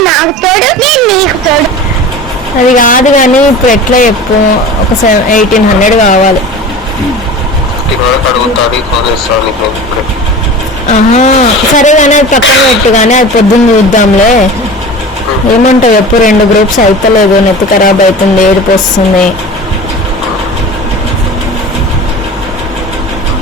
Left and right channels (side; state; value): both; normal; correlation 0.35